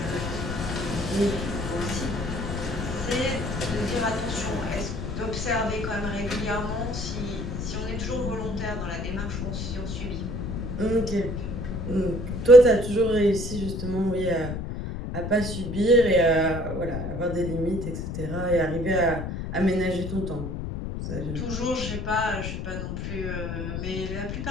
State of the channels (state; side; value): noise; left; rumble, 4 dB below the sound